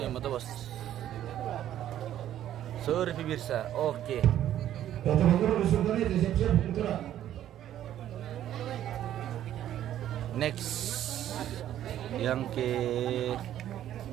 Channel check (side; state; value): left; quieter; 11.7 dB